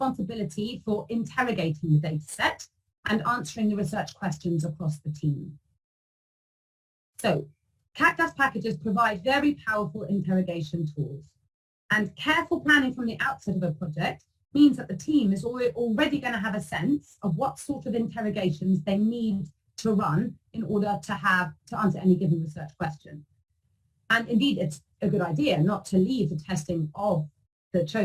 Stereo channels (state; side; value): identical; both; correlation 1.00